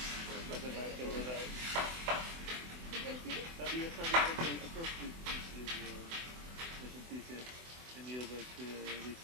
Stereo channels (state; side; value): late; left; 24 ms